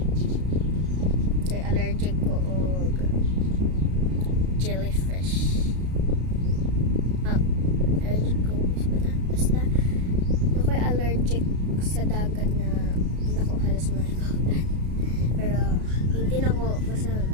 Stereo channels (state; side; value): late; left; 33 ms